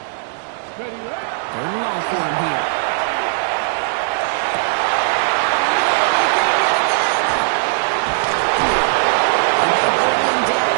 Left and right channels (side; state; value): left; silent; digital silence